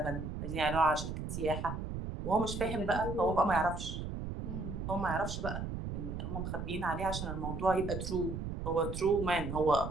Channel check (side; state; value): right; noise; rumble, 5 dB below the sound